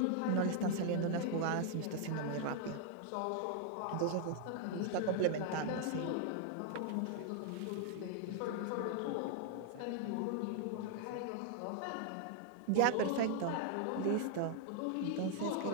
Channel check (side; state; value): both; different; correlation 0.00